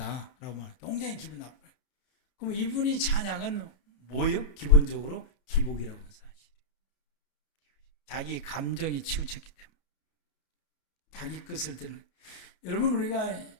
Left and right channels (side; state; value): right; late; 31 ms